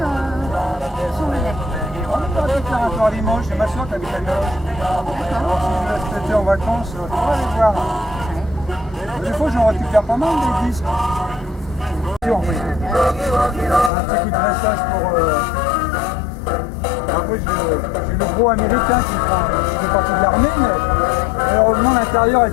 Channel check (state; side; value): drops out; right; at 13.9 s